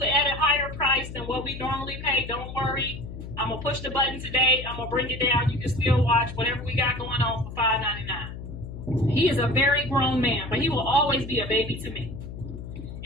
at a higher price than what we normally pay, don't worry. I'm gonna push the button today. I'm gonna bring it down. You can still watch whatever we got going on for $5.99. He is a very grown man, but he will always be a baby to me.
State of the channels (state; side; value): noise; left; hum, 10 dB below the sound